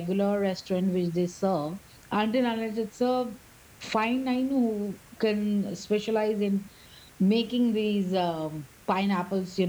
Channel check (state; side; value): identical; both; correlation 1.00